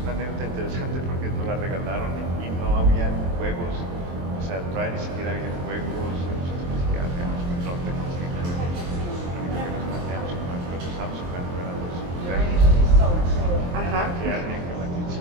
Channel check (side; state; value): left; late; 23 ms